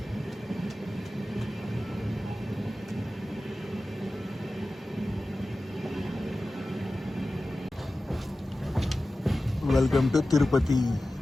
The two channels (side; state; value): both; normal; correlation 0.95